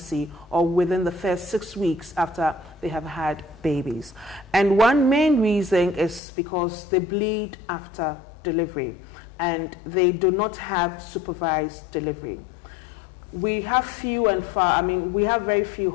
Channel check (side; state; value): right; drops out; at 6.2 s